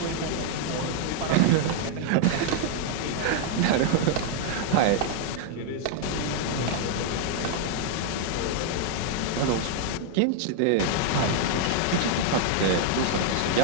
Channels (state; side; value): different; both; correlation 0.00